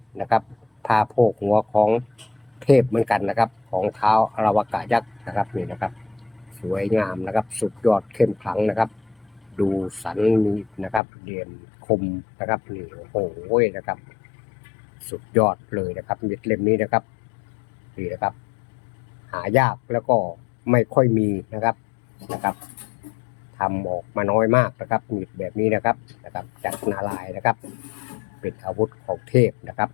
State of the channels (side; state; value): right; drops out; at 11.0 s